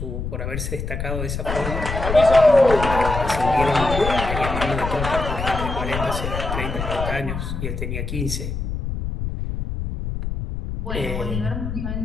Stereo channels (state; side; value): noise; left; rumble, 4 dB below the sound